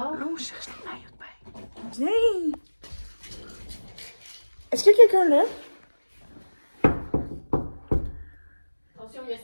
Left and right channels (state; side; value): inverted; both; correlation -1.00